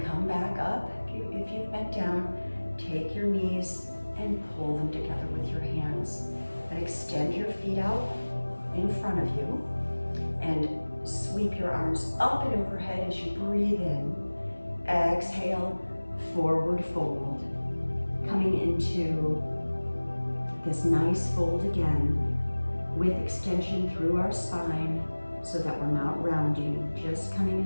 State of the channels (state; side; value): inverted; both; correlation -1.00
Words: come back up. If you've bent down, take your knees and pull them together with your hands. And extend your feet out in front of you and sweep your arms up and overhead as you breathe in. Exhale, forward fold. Coming into this nice fold again with extension through our spine so that we're not rounding, just coming